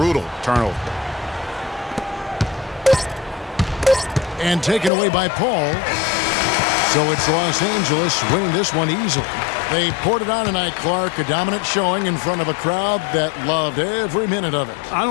turnover. And taken away by Paul. So it's Los Angeles winning this one easily. They poured it on tonight, Clark. A dominant showing in front of a crowd that loved every minute of it. I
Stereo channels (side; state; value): right; drops out; at 4.9 s